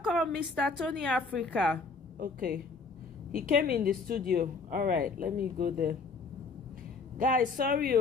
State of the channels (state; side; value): quieter; right; 4.4 dB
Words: Mr. Tony Africa. Okay. He came in the studio. All right, let me go there. Guys, sorry